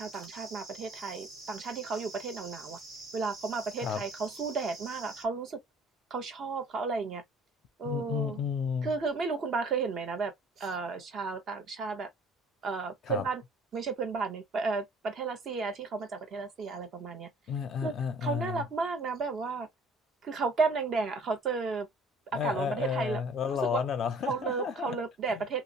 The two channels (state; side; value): normal; both; correlation 0.53